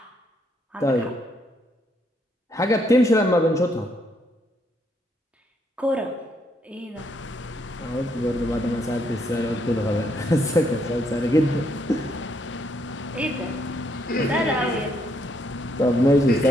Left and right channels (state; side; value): normal; both; correlation 0.73